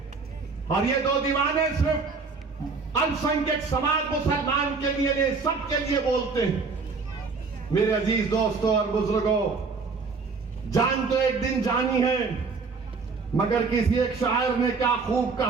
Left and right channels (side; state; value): left; quieter; 4.6 dB